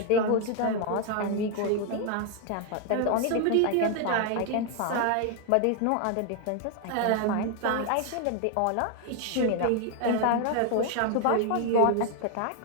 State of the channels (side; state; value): both; different; correlation 0.01